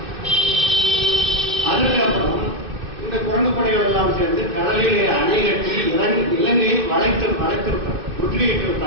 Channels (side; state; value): left; late; 2.6 ms